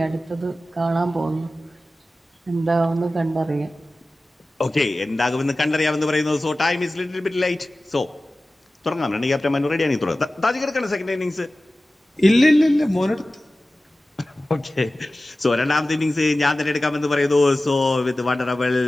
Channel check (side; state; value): both; normal; correlation 0.96